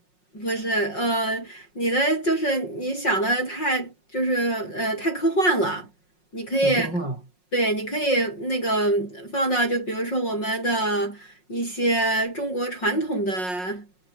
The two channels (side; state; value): right; late; 5.5 ms